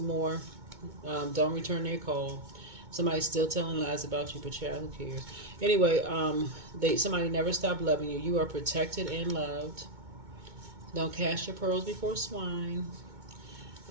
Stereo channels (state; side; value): late; left; 2.2 ms